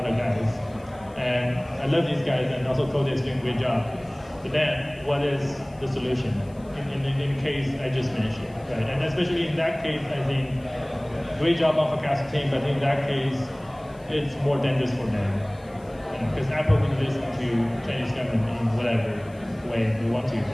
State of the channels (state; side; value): noise; left; hiss, 29 dB below the sound